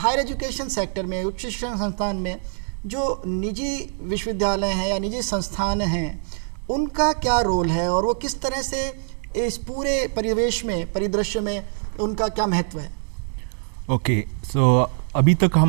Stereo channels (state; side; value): silent; left; digital silence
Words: एजुकेशन सेक्टर में, उच्च शिक्षण संस्थान में जो निजी विश्वविद्यालय हैं या निजी संस्थान हैं, उनका क्या रोल है और वो किस तरह से इस पूरे परिदृश्य में उनका क्या महत्व है? ओके, सो अभी तक